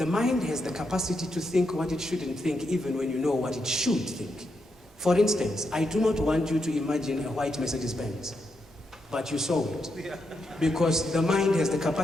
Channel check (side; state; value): both; normal; correlation 0.83